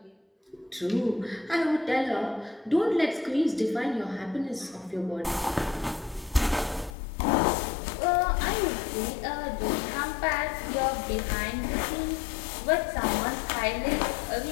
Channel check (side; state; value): right; drops out; at 6.9 s